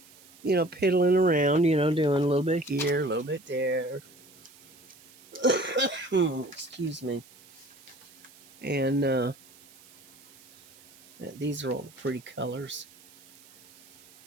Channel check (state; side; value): noise; right; hiss, 25 dB below the sound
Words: piddling around, doing a little bit here, a little bit there. Excuse me. And these are all the pretty colors.